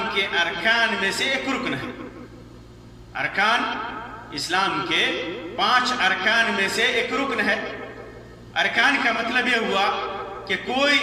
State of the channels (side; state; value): both; identical; correlation 1.00